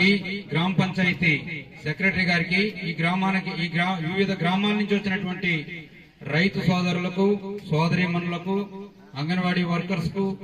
గ్రామ పంచాయతీ సెక్రటరీ గారికి, ఈ గ్రామానికి వివిధ గ్రామాల నుంచి వచ్చినటువంటి రైతు సోదరులకు, సోదరీమణులకు, అంగన్వాడీ వర్కర్స్ కు,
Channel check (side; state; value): both; identical; correlation 1.00